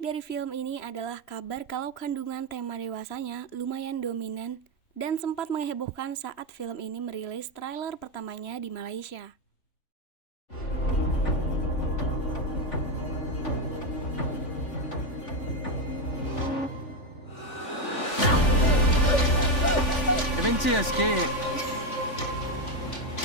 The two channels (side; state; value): right; late; 3.5 ms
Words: dari film ini adalah kabar kalau kandungan tema dewasanya lumayan dominan dan sempat menghebohkan saat film ini merilis trailer pertamanya di Malaysia. Adventure sikit.